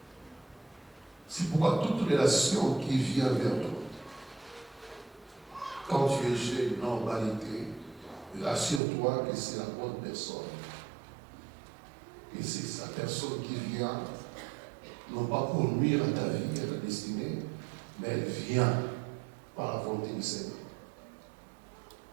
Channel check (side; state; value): left; drops out; at 8.8 s